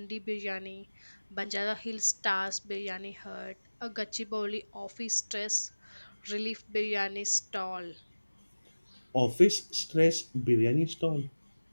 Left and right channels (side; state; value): both; inverted; correlation -1.00